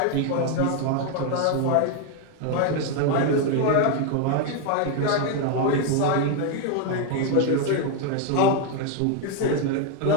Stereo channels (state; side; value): different; both; correlation 0.01